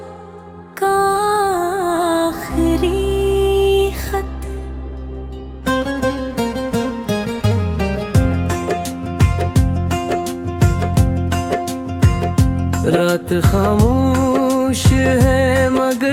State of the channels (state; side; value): identical; both; correlation 1.00